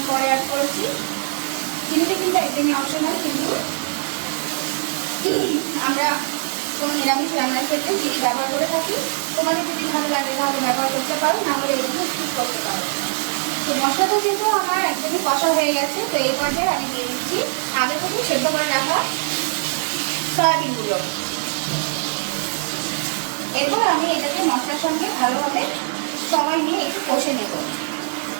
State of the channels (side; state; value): left; silent; digital silence